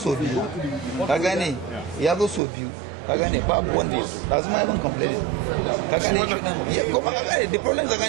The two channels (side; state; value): left; drops out; at 2.4 s